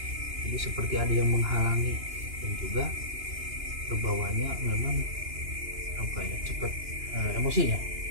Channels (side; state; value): left; late; 2.9 ms